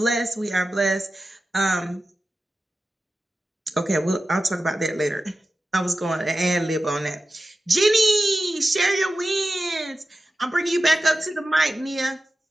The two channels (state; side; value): normal; both; correlation 0.93